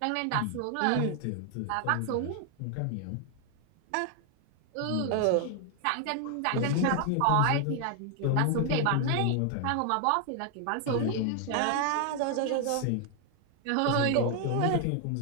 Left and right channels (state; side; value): different; both; correlation 0.00